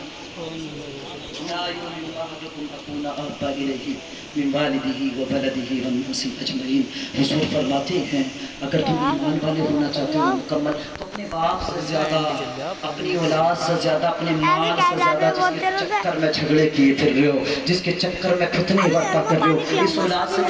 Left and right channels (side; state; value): both; identical; correlation 1.00